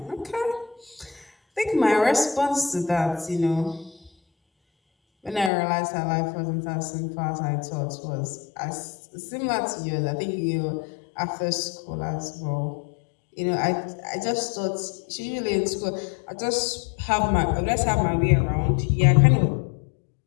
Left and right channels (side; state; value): right; drops out; at 5.5 s